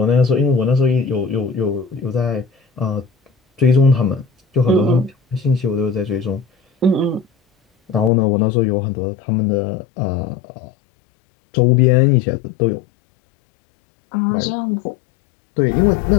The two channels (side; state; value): right; drops out; at 8.1 s